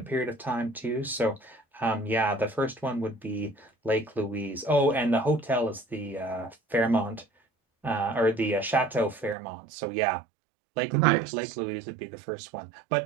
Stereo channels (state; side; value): drops out; left; at 9.3 s